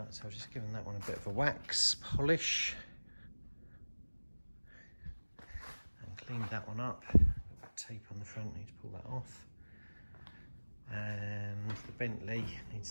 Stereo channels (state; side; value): inverted; both; correlation -1.00